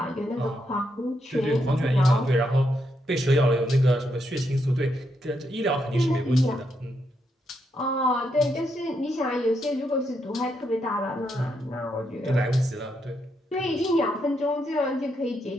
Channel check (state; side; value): normal; both; correlation 0.80